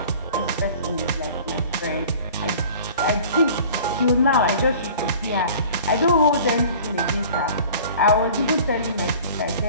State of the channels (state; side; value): inverted; both; correlation -0.45